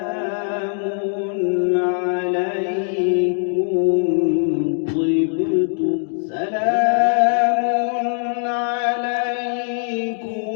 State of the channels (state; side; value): silent; right; 65 dB below the other